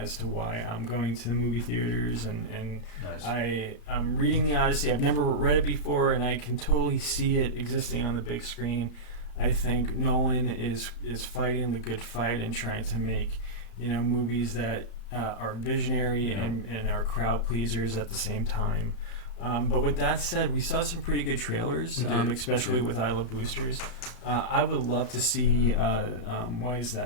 to why I'm going to the movie theaters, and Nice. I'm reading the Odyssey. I've never read it before, and I can totally see it existing on the big screen. I think Nolan is fighting the good fight and trying to make movies that are visionary and are crowd pleasers at the same time. But with that said, we saw some pretty good trailers, especially with I Love Boosters. I would love to see, what is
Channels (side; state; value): right; late; 34 ms